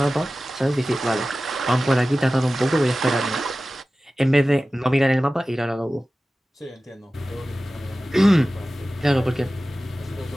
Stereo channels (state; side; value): normal; both; correlation 0.96